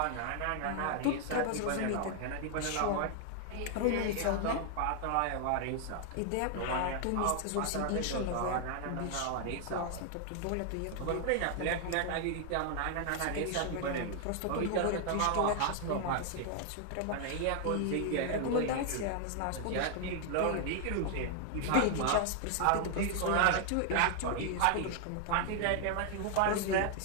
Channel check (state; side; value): different; both; correlation 0.00